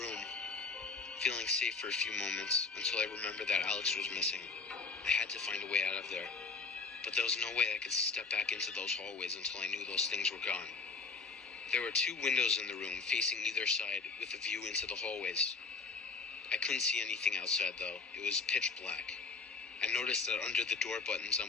feeling safe for a few moments, until I remembered that Alex was missing. I had to find a way out of there. But there was no way I could step back into those hallways until I knew those things were gone. There were 2 windows in the room, facing either side, with a view into the hallways. I couldn't see anything outside, though. It was pitch black. I noticed that under the door buttons on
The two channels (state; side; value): quieter; right; 4.6 dB